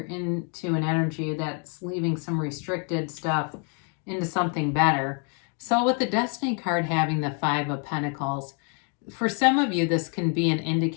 into an energy that's leaving some restricted stuff into something better. So with the Destiny card having the Five of Pentacles, for some of you, this can be an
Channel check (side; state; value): right; quieter; 39.6 dB